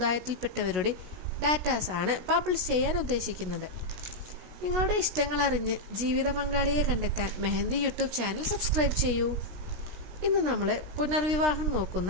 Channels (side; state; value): left; late; 16 ms